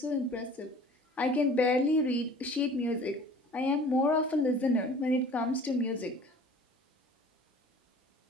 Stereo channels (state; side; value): normal; both; correlation 0.46